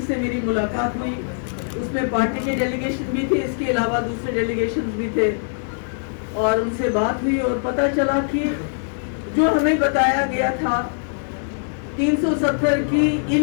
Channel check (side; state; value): right; silent; digital silence